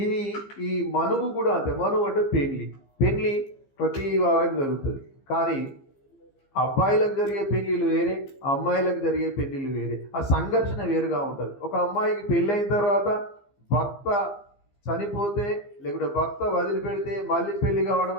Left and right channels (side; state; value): right; late; 15 ms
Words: ఈ మనువు కూడా అంతే. మనువు అంటే పెళ్లి ప్రతి వారికి జరుగుతుంది. కానీ అబ్బాయిలకు జరిగే పెళ్ళిళ్ళు వేరే, అమ్మాయిలకు జరిగే పెళ్ళిళ్ళు వేరే. ఆ సంఘర్షణ వేరుగా ఉంటుంది. ఒక అమ్మాయికి పెళ్ళైన తర్వాత భర్త చనిపోతే, లేకుంటే భర్త వదిలిపెడితే మళ్ళీ పెళ్లి కావడం